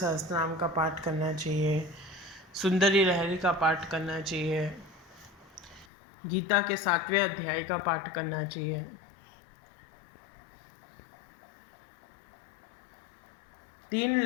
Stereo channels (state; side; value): drops out; right; at 5.9 s